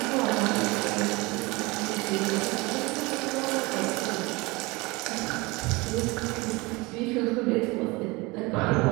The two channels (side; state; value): left; quieter; 24.3 dB